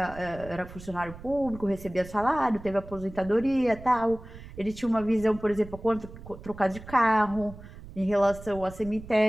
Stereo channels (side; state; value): right; noise; rumble, 15 dB below the sound